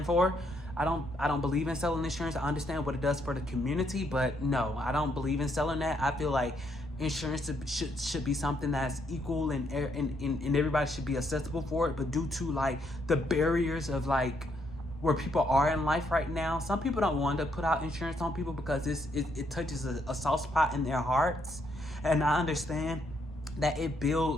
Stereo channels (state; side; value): normal; both; correlation 0.74